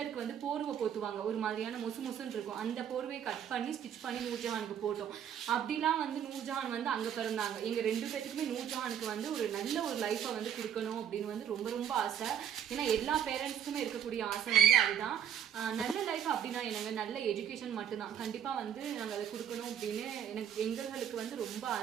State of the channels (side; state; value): left; quieter; 9.1 dB